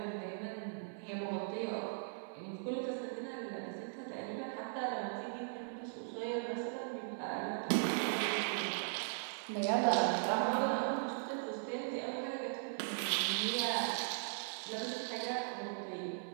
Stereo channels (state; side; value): silent; left; 52 dB below the other